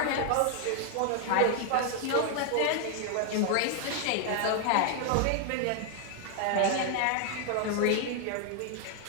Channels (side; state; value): both; different; correlation 0.00